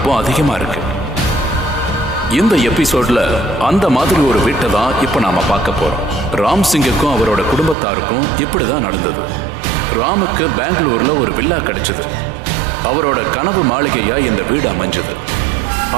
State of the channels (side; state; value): left; drops out; at 7.8 s